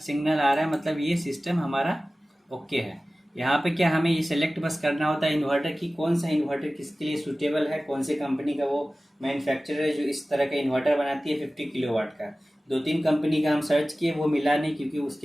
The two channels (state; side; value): normal; both; correlation 0.97